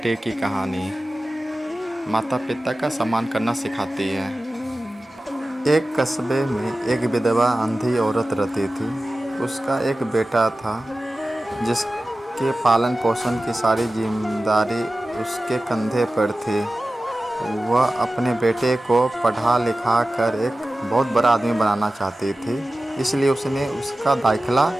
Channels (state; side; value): normal; both; correlation 0.95